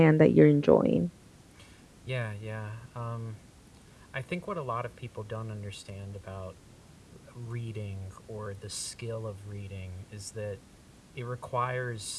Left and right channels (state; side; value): identical; both; correlation 1.00